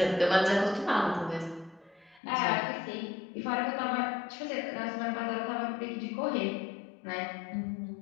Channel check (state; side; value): drops out; right; at 2.2 s